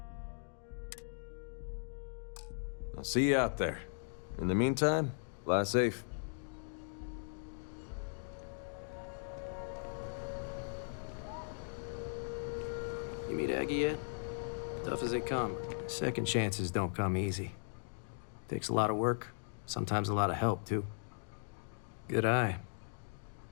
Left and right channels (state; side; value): silent; right; digital silence